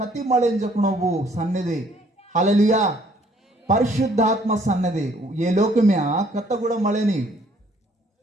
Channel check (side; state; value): both; normal; correlation 0.62